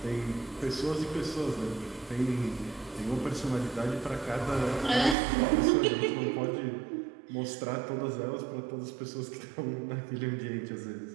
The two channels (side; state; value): left; drops out; at 5.2 s